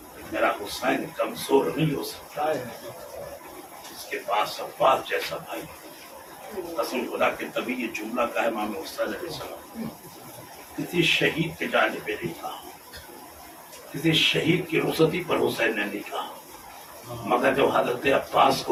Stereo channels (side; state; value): both; identical; correlation 1.00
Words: میرا حسین کمزور نہیں ہو سکتا، اس کے پاس عباس جیسا بھائی۔ قسم خدا کے تبھی یہ جملہ کا ہے امام حسین علیہ السلام، کسی شہید کے جانے پہ نہیں کہا، کسی شہید کی رخصتی پر حسین نے نہیں کہا، مگر جب حضرت عباس